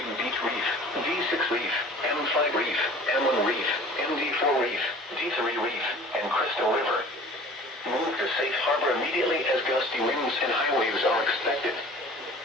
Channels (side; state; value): both; normal; correlation 0.45